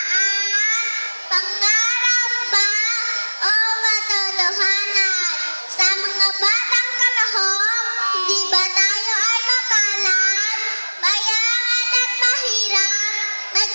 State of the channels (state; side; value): inverted; both; correlation -1.00